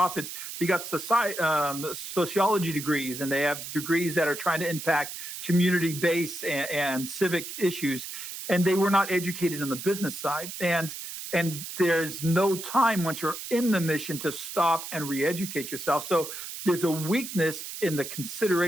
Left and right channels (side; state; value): right; noise; hiss, 9 dB below the sound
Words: they got sociology degrees, and they have degrees that are trying to impact community-based and civic issues, and they were not educated on the business side. And there's no time once you're in the mission to stop and re-educate yourself. So there's a weakness in the